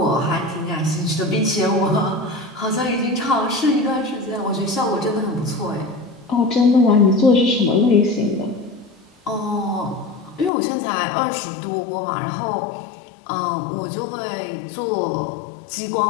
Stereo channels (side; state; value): right; drops out; at 10.5 s